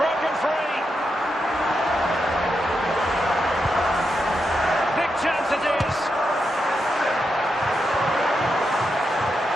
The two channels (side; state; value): both; normal; correlation 0.85